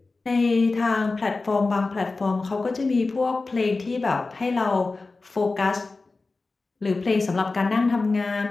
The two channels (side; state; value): right; quieter; 3.7 dB